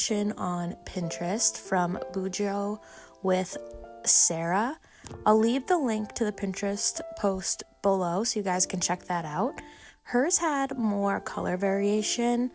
on Pinterest from Bujo with Sarah. I'll leave the link to the Pinterest post below so you guys can check that out. Hers had more color variation,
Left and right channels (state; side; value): identical; both; correlation 1.00